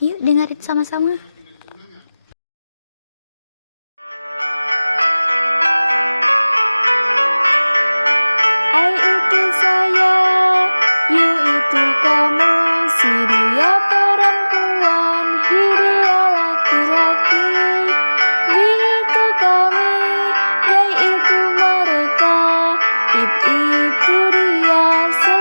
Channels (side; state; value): both; inverted; correlation -0.99